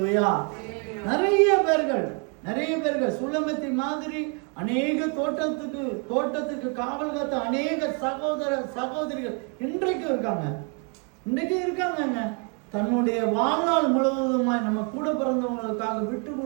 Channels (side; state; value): left; quieter; 37.6 dB